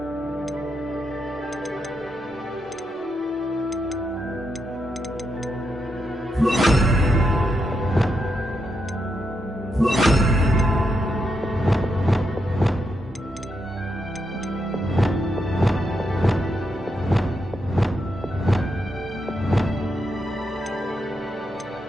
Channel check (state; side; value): normal; both; correlation 0.83